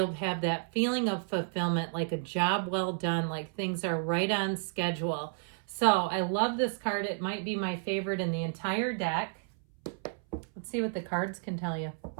have that feeling of fulfillment, like a job well done, like things are right on schedule. So I love this card. It might be my favorite in the entire deck. Let's see what the cards can tell you.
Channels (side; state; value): left; silent; 57 dB below the other